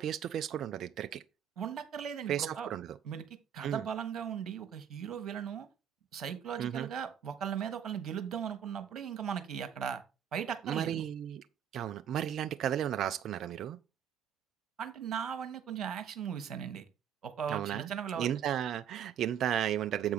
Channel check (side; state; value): left; quieter; 9.0 dB